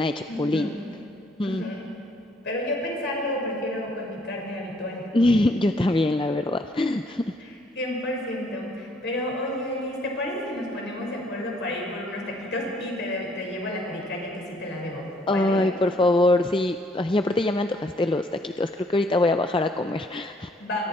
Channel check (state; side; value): normal; both; correlation 0.65